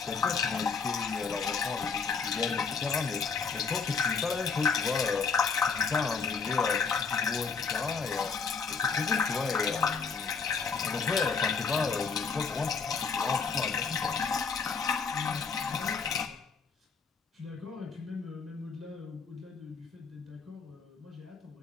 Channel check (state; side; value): quieter; right; 5.3 dB